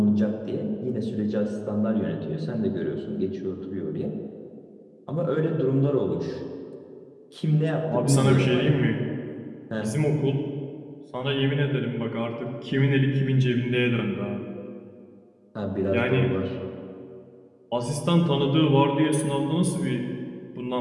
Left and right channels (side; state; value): both; identical; correlation 1.00